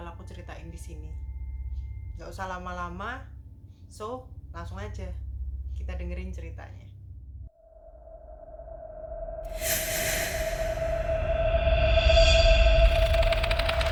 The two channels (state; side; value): identical; both; correlation 1.00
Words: aku ceritain di sini. Gak usah lama-lama, so langsung aja kita dengerin ceritanya.